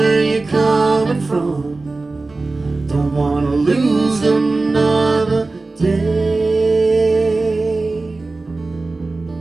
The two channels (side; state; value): left; quieter; 3.5 dB